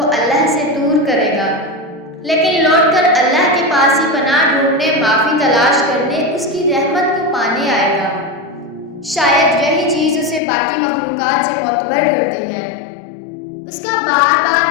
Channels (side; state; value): right; drops out; at 10.4 s